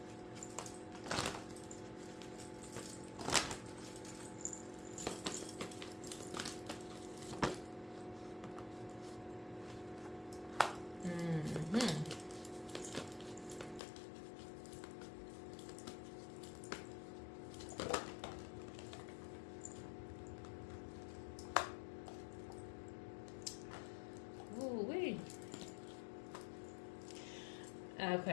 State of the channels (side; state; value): right; drops out; at 13.8 s